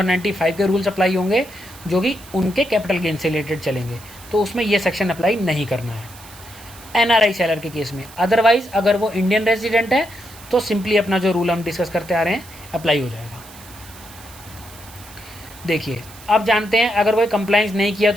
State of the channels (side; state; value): right; noise; hiss, 20 dB below the sound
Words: के रूल्स अप्लाई होंगे जो कि उनके कैपिटल गेन से रिलेटेड चलेंगे, तो उसमें ये सेक्शन अप्लाई नहीं करना है एनआरआई सेलर के केस में। अदरवाइज अगर वो इंडियन रेजिडेंट है तो सिंपली अपना जो रूल हम डिस्कस करते आ रहे हैं अप्लाई हो जाएगा। देखिए अब जानते हैं अगर वो कंप्लाइंस नहीं किया